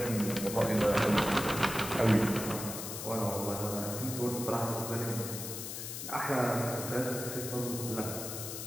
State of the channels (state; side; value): noise; left; hiss, 7 dB below the sound